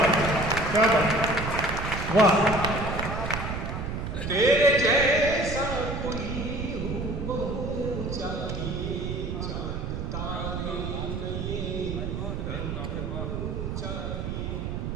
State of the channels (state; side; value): noise; right; rumble, 4 dB below the sound